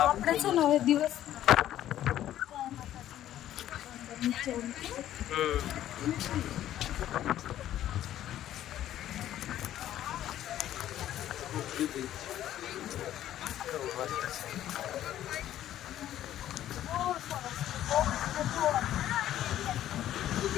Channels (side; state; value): right; quieter; 12.3 dB